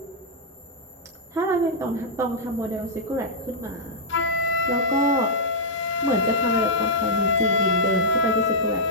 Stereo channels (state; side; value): normal; both; correlation -0.09